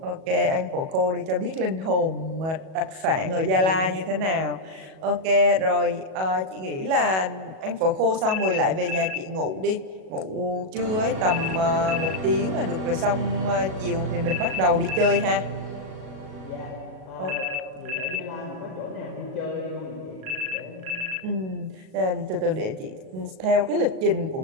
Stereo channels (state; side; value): late; left; 37 ms